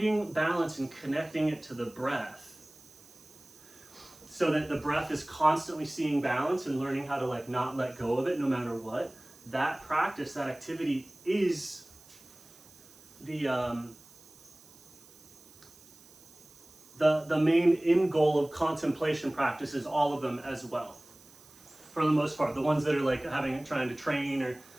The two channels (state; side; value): noise; right; hiss, 24 dB below the sound